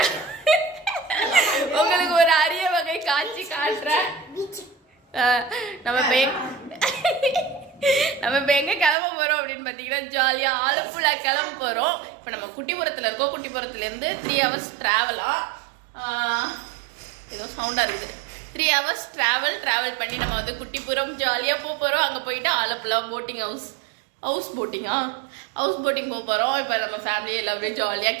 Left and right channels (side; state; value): left; drops out; at 9.0 s